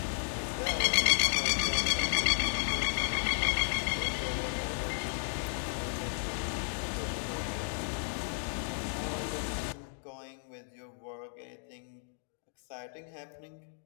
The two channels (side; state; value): right; silent; 55 dB below the other